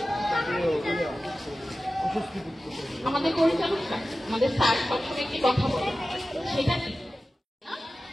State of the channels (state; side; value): normal; both; correlation 0.95